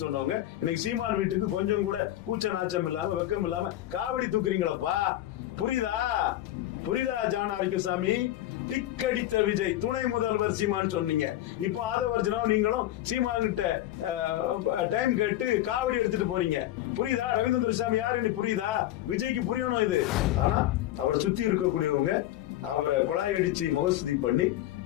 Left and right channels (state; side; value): quieter; right; 14.1 dB